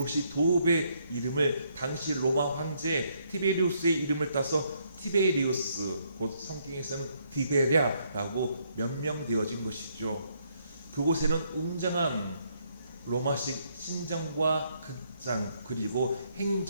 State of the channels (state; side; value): inverted; both; correlation -0.72